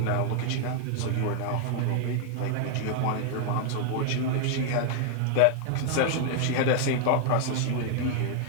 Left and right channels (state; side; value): different; both; correlation 0.00